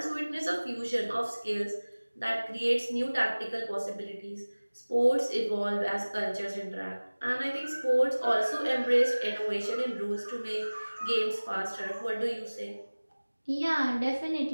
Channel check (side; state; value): both; inverted; correlation -1.00